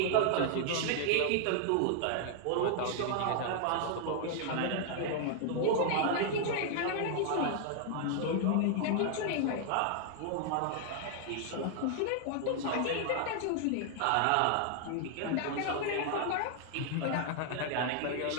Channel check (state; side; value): different; both; correlation -0.01